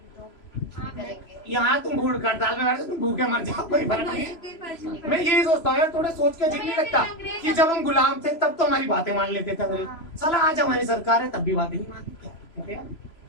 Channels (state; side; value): late; right; 3.0 ms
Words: करेंगे। यहाँ तुम भूख हड़ताल में बैठे तुम भूखे मर जाओ, कोई फर्क नहीं है। मैं यही सोचता हूँ यार, थोड़ा सोच के अजीब नहीं लगता कि जब हम गुलाम थे तब तो हमारी बातें मान लेते थे। साला आज हमारी सरकार है तब भी बातें नहीं मानती।